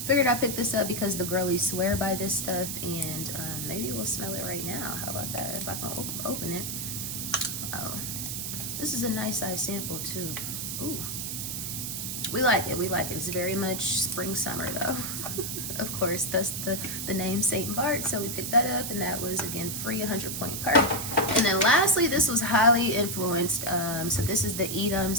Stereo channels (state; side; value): noise; right; hiss, 4 dB below the sound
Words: figured I picked this up because the girlies swear by this stuff, and maybe we'll smell it right now. How about that? If I can open it. Oh, this is a nice size sample too. Ooh, we like it. It's very much spring summer though. Of course, that's the name St. Bart. So we picked that up, and that was again free 100 point perk. And then lastly, this was highly influenced. So this is the Edam.